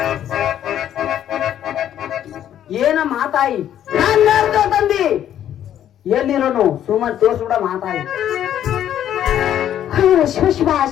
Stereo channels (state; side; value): quieter; right; 10.8 dB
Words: ಏನ ಮಾತಾಯಿ ನನ್ನ ತಂದಿ ಎಲ್ಲಿರೋನು ಸುಮ್ಮನೆ ತೋರ್ಸ್ಬಿಡ ಮಾತಾಯಿ ಶಿವ ಶಿವ